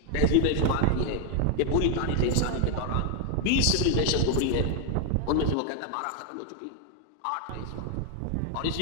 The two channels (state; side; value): different; both; correlation 0.01